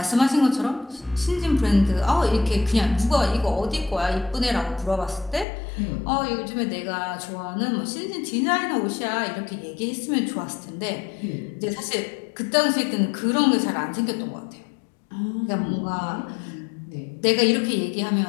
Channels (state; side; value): drops out; right; at 5.5 s